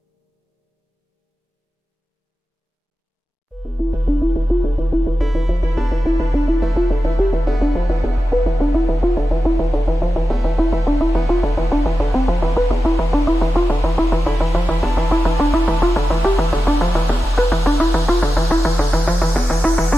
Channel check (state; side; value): normal; both; correlation 0.92